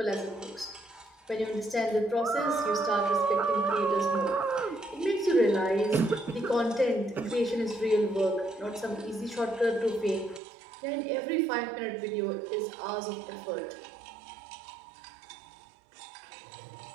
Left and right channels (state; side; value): drops out; left; at 10.4 s